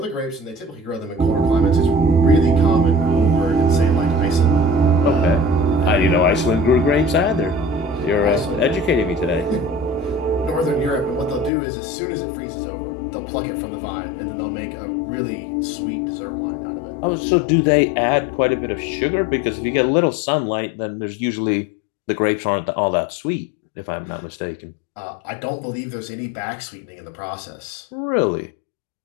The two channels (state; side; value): drops out; right; at 11.5 s